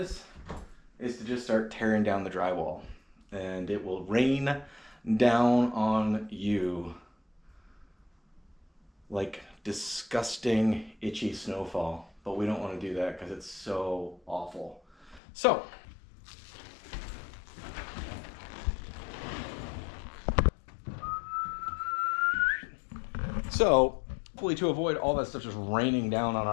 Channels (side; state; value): right; drops out; at 15.2 s